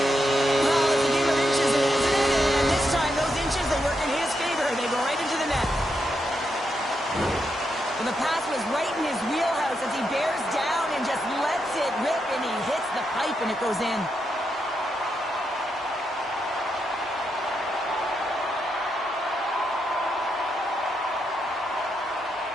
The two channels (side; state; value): both; normal; correlation 0.83